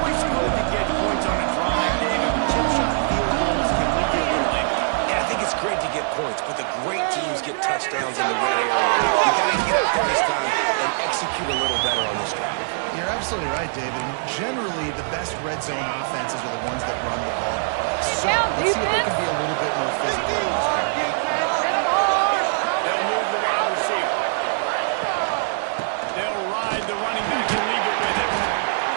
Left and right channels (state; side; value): silent; left; 60 dB below the other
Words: good to get points on a drive, David. Chip shot field goals can leave you a little empty. Yeah, I think it's great to get points, but the great teams get touchdowns in the red area. You got to get out there this time and execute a little better on this drive. You're absolutely right, David. Generally, the best red zone offenses are the ones that run the ball the best. So let's see if they can be a little bit more physical in this game. They'll move the wide receiver. They'll ride the running back and leave it with him.